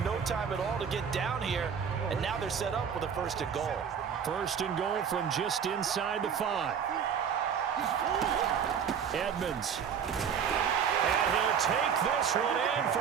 no time at all to get down here. And now they're set up with a 1st and goal. 1st and goal from just inside the 5. Edmonds. And he'll take this one in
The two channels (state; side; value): quieter; left; 7.4 dB